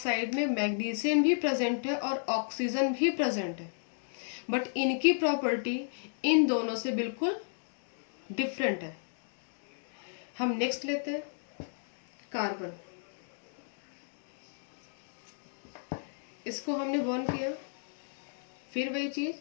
में मैग्नीशियम भी प्रेजेंट है और ऑक्सीजन भी प्रेजेंट है, बट इनकी प्रॉपर्टी इन दोनों से बिल्कुल डिफरेंट है। हम नेक्स्ट लेते हैं कार्बन। इसको हमने बर्न किया, फिर वही चीज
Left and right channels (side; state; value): right; silent; digital silence